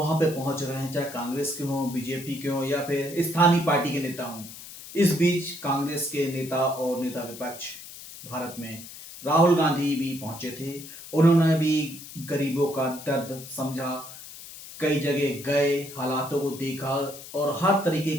पे पहुँच रहे हैं, चाहे कांग्रेस के हों, बीजेपी के हों या फिर स्थानीय पार्टी के नेता हों। इस बीच कांग्रेस के नेता और नेता विपक्ष भारत में राहुल गांधी भी पहुंचे थे। उन्होंने भी गरीबों का दर्द समझा, कई जगह गए, हालातों को देखा और हर तरीके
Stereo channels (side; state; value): left; noise; hiss, 14 dB below the sound